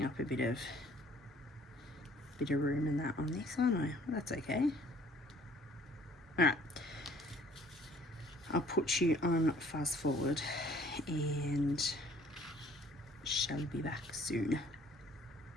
up a bit of room in that on this, aren't I? That's okay. Alright. I'll put you on fast forward and shall be back soon.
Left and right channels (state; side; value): normal; both; correlation 0.56